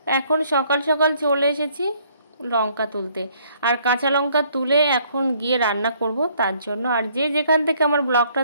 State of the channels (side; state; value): both; inverted; correlation -0.64